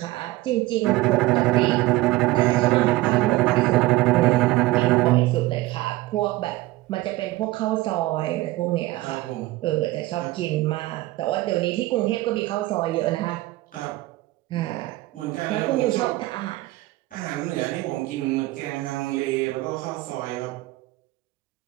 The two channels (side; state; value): left; quieter; 18.6 dB